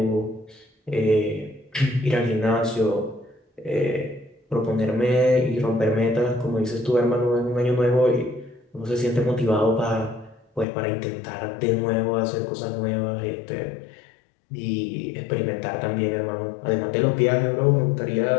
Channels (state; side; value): drops out; right; at 10.7 s